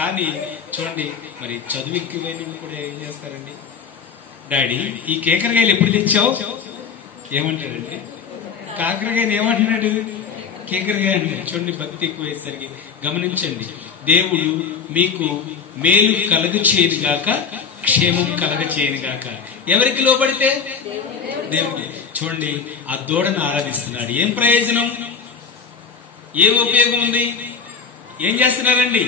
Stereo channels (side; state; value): right; quieter; 6.0 dB